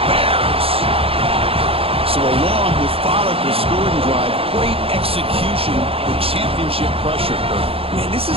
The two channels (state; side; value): late; left; 0.27 ms